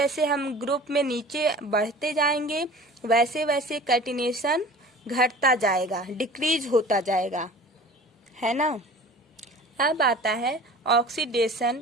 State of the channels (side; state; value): both; normal; correlation 0.42